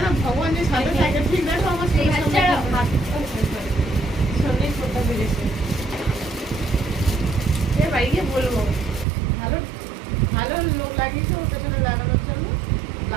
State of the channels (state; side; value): drops out; left; at 9.1 s